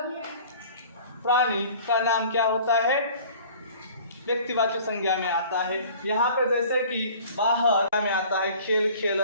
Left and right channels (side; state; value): both; inverted; correlation -0.47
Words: का नाम क्या होता है, व्यक्तिवाचक संज्ञा में आता है। यहाँ पे जैसे कि बाहर में आता है खेल